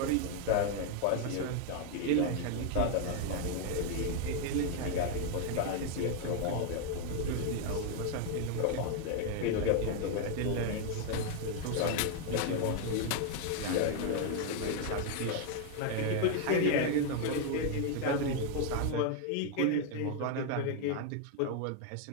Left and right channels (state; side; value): different; both; correlation 0.00